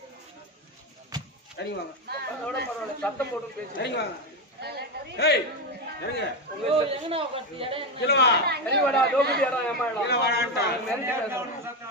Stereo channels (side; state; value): both; normal; correlation 0.12